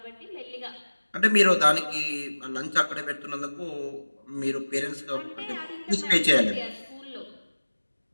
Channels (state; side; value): inverted; both; correlation -1.00